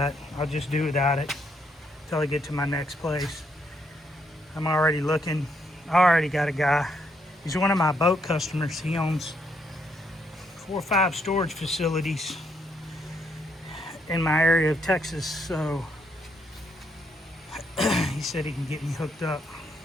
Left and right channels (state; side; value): normal; both; correlation 0.75